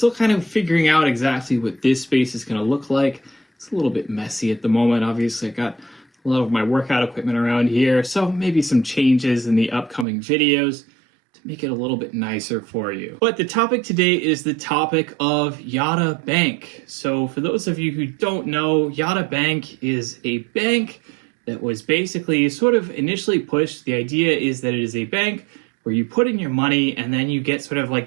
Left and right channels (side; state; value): left; drops out; at 10.1 s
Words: kind of figuring out exactly what this space is going to look like. It's a little bit messy at the moment. Obviously, I got a lot of my workout equipment around here, so maybe some changes in the upcoming videos to make it a little bit nicer for you. But the topic today is the topic of Yada Bank. So for those of you who don't know, Yada Bank is a bank that was basically sort of initially pushed. The idea is that it is a bank where you put in your money and then you get sort of like